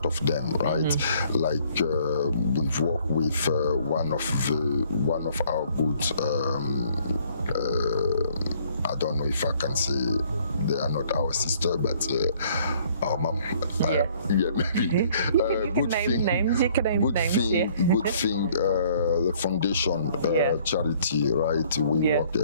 of them, right? Like we've worked with one of our good. I don't know if I can say they are not our sister, but our mom. Maybe. Good thing. Good thing. The foundation charity, right? We work.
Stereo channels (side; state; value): both; inverted; correlation -0.61